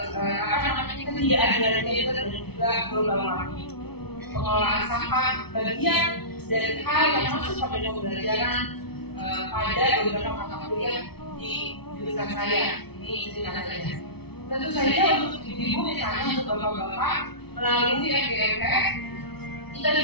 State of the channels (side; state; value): right; late; 0.98 ms